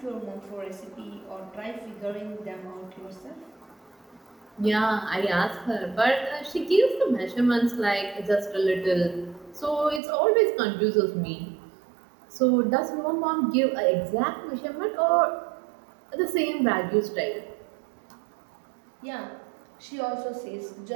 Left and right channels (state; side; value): drops out; left; at 10.0 s